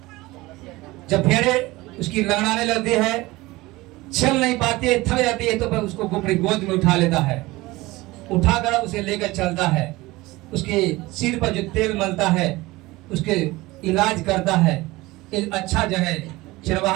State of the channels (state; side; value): quieter; left; 20.3 dB